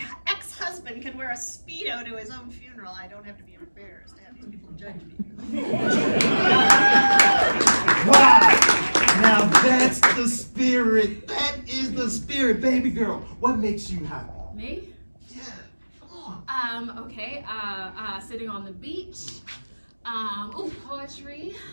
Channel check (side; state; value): both; inverted; correlation -1.00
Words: ex-husband can wear a Speedo to his own funeral, I don't have to be embarrassed to have these people judge me. Wow! Now that's the spirit. That is the spirit, baby girl. What makes you happy? Me? Yeah, come on. Okay, sitting on the beach. Poetry.